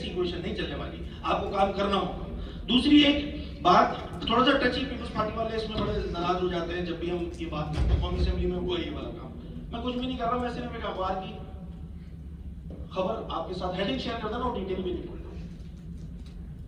क्वेश्चन नहीं चलने वाली, आपको काम करना होगा। दूसरी एक बात, थोड़ा सा टची, पीपल्स पार्टी वाले इसमें बड़े नाराज हो जाते हैं जब भी हम ये बात करते हैं। कौमी असेंबली में हुआ ये वाला काम, मैं कुछ भी नहीं कर रहा हूं, मैं सिर्फ एक अखबार की खबर आपके साथ हेडिंग शेयर करता हूं, डिटेल भी नहीं।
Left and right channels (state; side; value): identical; both; correlation 1.00